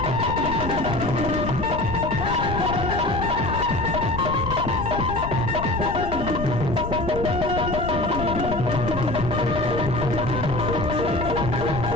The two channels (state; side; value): noise; left; rumble, 6 dB below the sound